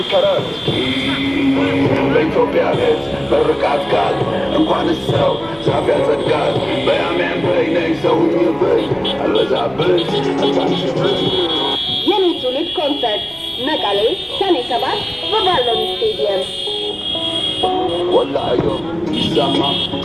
ተረት በኢትዮጵያ ቤት በርቃት ቃል እንኳን ሰው ዛፍ ያጸድቃል በያሜን በይ ነይ ሰውኝ በይ አልበዛብሽ አታንሽብሽ የኔ ትውልድ ኮንሰርት መቀሌ ሰኔ 7 በባሎን ስቴዲየም ወላዮ ይሰማ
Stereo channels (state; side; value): noise; right; rumble, 24 dB below the sound